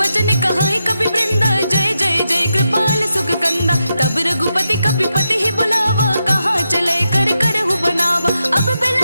वचन कहाई कपि वृंदा जय जय जय कृपाल सुख कंदा। तब रघुपति कपिपति ही बुलावा कहाँ चले कर करहु बनावा। अब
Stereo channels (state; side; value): inverted; both; correlation -0.86